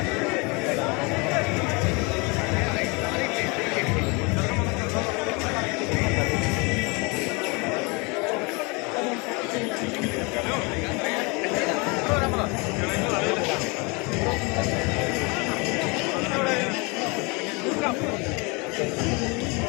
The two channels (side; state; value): right; quieter; 29.2 dB